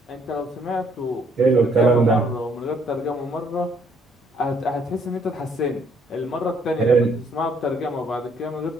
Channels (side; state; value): both; normal; correlation 0.67